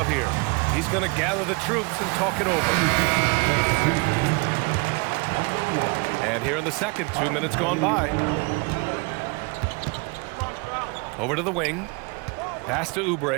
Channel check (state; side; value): quieter; left; 29.2 dB